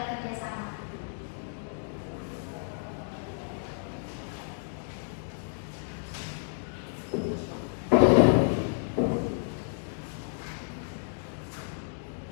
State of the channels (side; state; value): right; silent; digital silence